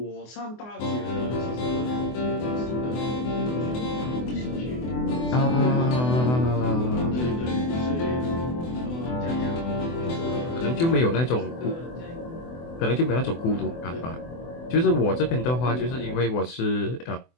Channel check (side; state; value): right; late; 24 ms